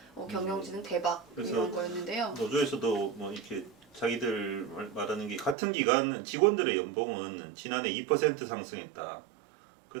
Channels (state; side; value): drops out; left; at 5.6 s